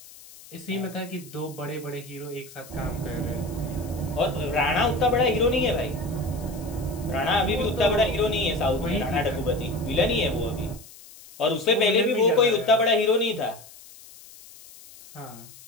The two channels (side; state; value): left; noise; hiss, 20 dB below the sound